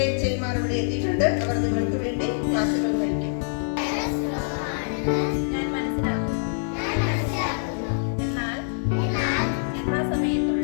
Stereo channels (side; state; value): right; silent; 62 dB below the other